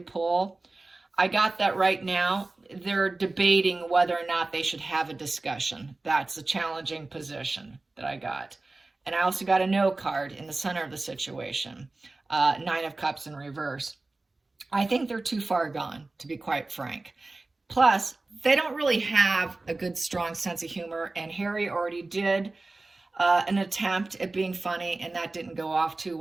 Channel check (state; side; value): quieter; left; 3.2 dB